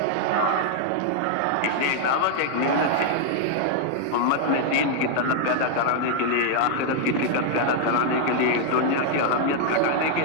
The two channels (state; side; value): different; both; correlation 0.00